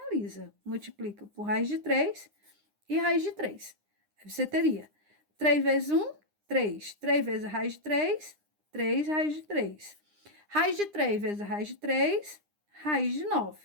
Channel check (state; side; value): late; left; 9.8 ms